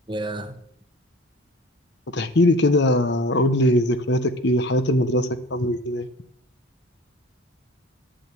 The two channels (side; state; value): both; normal; correlation 0.42